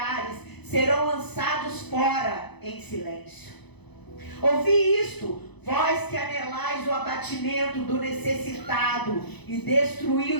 serão lançados fora em silêncio. Ouvi isto, vós que anelais o abatimento do necessitado e destruí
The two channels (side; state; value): right; late; 0.99 ms